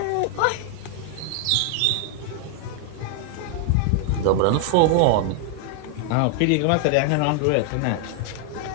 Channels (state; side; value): different; both; correlation 0.00